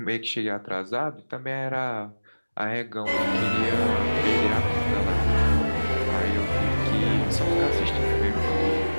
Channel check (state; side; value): inverted; both; correlation -1.00